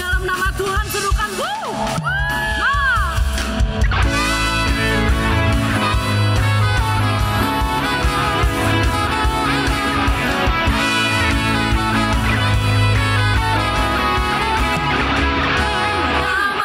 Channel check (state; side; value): identical; both; correlation 1.00